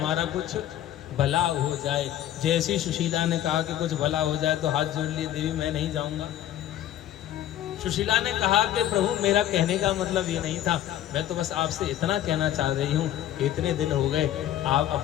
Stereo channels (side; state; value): right; quieter; 12.1 dB